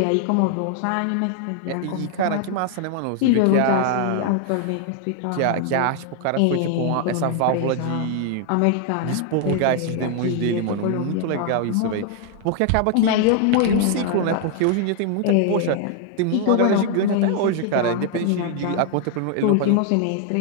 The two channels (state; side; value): different; both; correlation 0.00